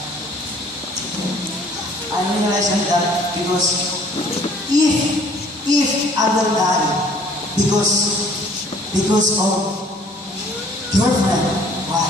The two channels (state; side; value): normal; both; correlation 0.56